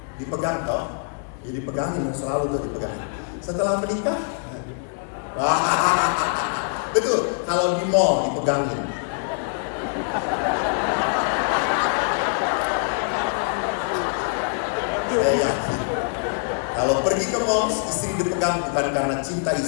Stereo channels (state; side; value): silent; right; digital silence